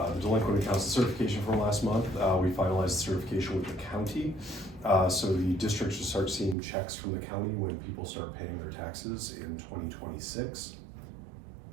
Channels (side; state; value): left; drops out; at 6.6 s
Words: delinquent accounts certification from last month, we finalized the certification with the county. So the district should start seeing checks from the county when people start paying their taxes in 2026.